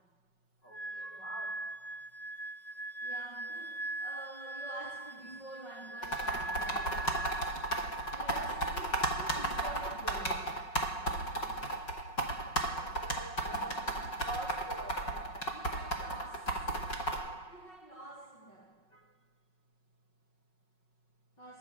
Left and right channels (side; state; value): right; late; 5.4 ms